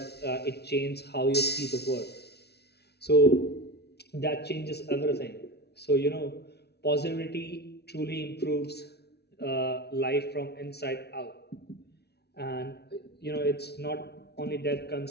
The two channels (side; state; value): right; late; 0.49 ms